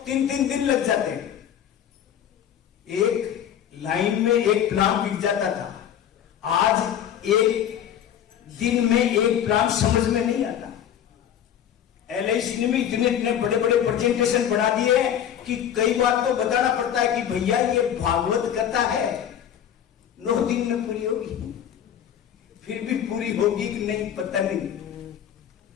3 दिन लग जाते हैं। एक लाइन में एक प्लान बिक जाता था, आज एक दिन में एक प्लान समझ में नहीं आता। LIC ने भी इतने बड़े बड़े प्रेजेंटेशन बना दिए हैं कि कई बार तो बताना पड़ता है कि भैया ये भागवत कथा है, 9 दिन में पूरी होगी। फिर भी पूरी होगी कि नहीं पता नहीं।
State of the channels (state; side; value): quieter; right; 9.7 dB